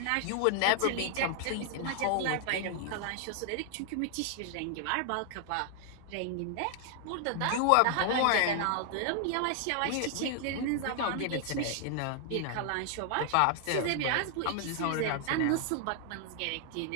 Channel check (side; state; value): both; different; correlation 0.00